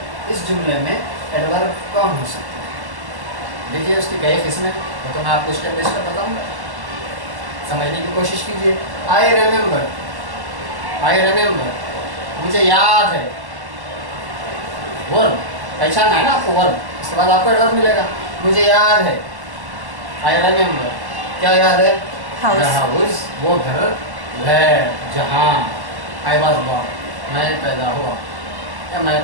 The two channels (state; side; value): late; left; 1.0 ms